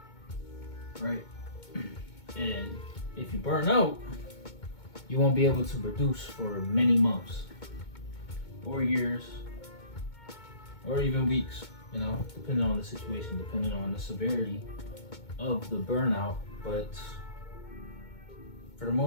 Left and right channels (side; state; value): right; late; 2.2 ms